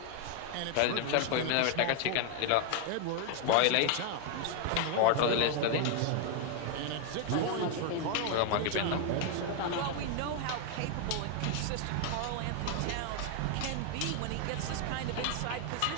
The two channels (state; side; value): different; both; correlation 0.00